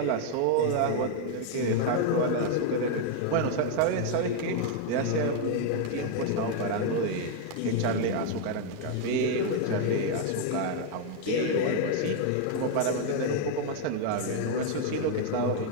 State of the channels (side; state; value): both; different; correlation 0.00